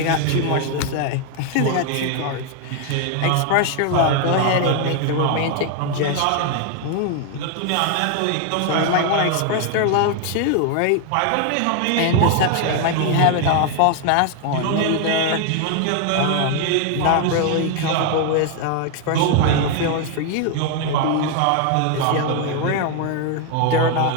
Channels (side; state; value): both; different; correlation 0.00